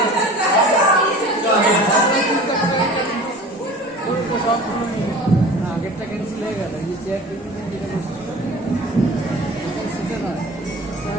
ওর তো সব আগেরটা ক্যান্সেল হয়ে গেল, এই চেয়ার টেবিল যেটা বসেছিল সেটা নয়,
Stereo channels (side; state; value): both; normal; correlation 0.40